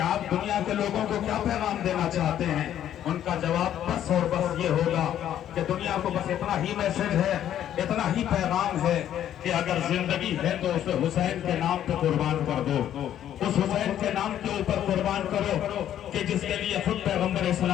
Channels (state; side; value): quieter; right; 10.9 dB